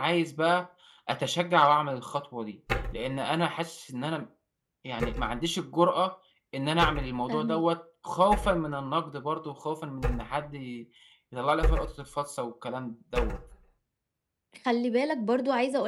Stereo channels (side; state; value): both; identical; correlation 1.00